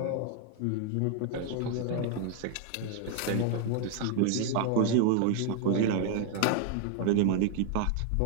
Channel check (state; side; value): different; both; correlation 0.00